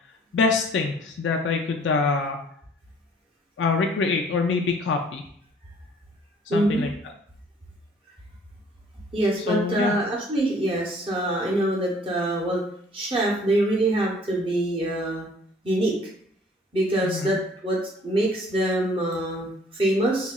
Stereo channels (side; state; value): both; normal; correlation 0.56